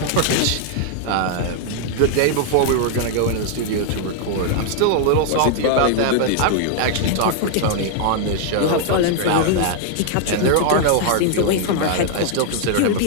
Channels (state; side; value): different; both; correlation 0.00